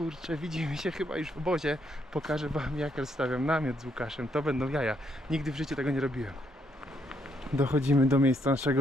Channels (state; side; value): normal; both; correlation 0.74